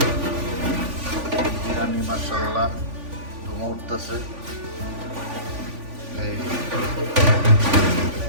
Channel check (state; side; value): late; left; 3.5 ms